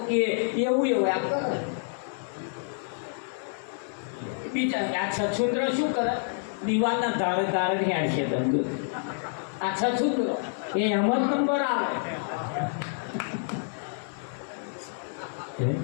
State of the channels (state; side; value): silent; right; 59 dB below the other